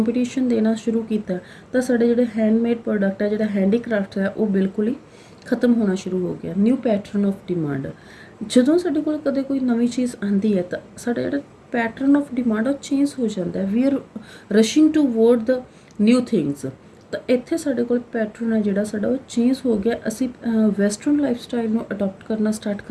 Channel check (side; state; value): both; identical; correlation 1.00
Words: ਦੇਣਾ ਸ਼ੁਰੂ ਕੀਤਾ ਤਾਂ ਸਾਡੇ ਜਿਹੜੇ ਹੈਂਡਮੇਡ ਪ੍ਰੋਡਕਟ ਹੈ, ਜਿਹੜਾ ਹੈਂਡੀਕ੍ਰਾਫਟ ਹੈ, ਉਹ ਬਿਲਕੁਲ ਹੀ ਖਤਮ ਹੋਣਾ ਸ਼ੁਰੂ ਹੋ ਗਿਆ। ਨਿਊ ਪੈਟਰਨ ਆਫ ਡਿਮਾਂਡ, ਜਦੋਂ ਸਾਡੇ ਕੋਲ ਕਦੇ ਕੋਈ ਨਵੀਂ ਚੀਜ਼ ਆਉਂਦੀ ਹੈ ਤਾਂ ਸਾਡਾ ਜਿਹੜਾ ਪੈਟਰਨ ਆਫ ਡਿਮਾਂਡ ਉਹ ਚੇਂਜ ਹੋ ਜਾਂਦਾ, we are rushing toward the new things. ਤਾਂ ਇੱਥੇ ਸਾਡੇ ਕੋਲ ਪੈਟਰਨ ਹੈ ਜਿਹੜਾ ਸਾਡਾ ਉਹ ਚੇਂਜ ਹੋ ਗਿਆ। ਅਸੀਂ ਵੈਸਟਰਨ ਲਾਈਫ ਸਟਾਈਲ ਨੂੰ ਅਡੋਪਟ ਕਰਨਾ ਸਟਾਰਟ